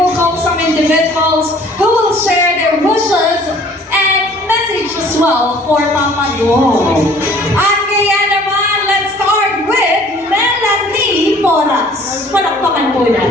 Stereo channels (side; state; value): both; normal; correlation 0.53